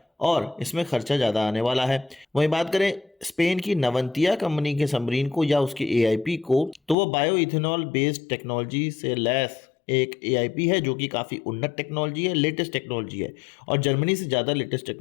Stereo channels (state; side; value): drops out; right; at 7.0 s